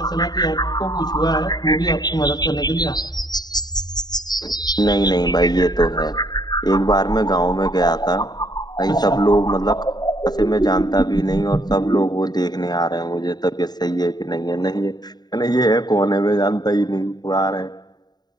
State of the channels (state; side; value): late; right; 0.20 ms